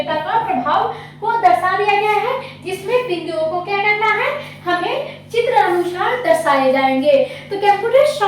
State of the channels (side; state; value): both; identical; correlation 1.00